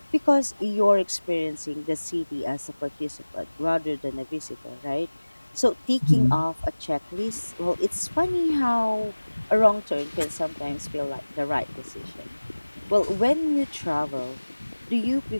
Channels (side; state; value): both; inverted; correlation -1.00